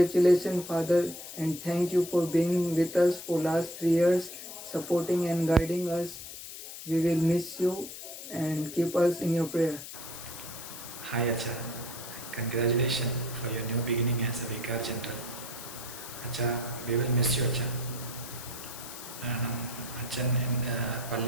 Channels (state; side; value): noise; left; hiss, 11 dB below the sound